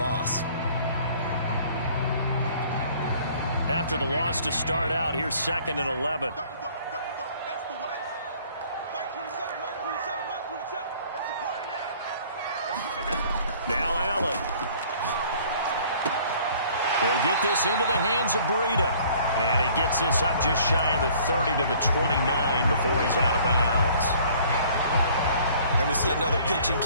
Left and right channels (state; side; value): inverted; both; correlation -0.55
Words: After the loss to start out, here's 2nd and 11. Now Allen. He'll get this into the hands of Breida. And he gets this up just shy of the 30 to the 29 before he's out of bounds. And we see another pitch and